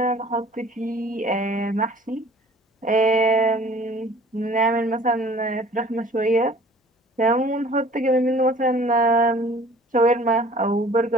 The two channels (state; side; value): normal; both; correlation 0.50